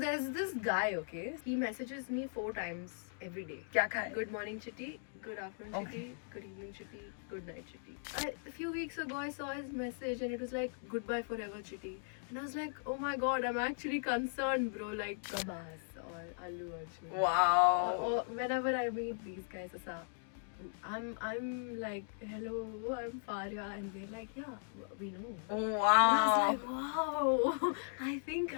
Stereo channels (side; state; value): right; silent; digital silence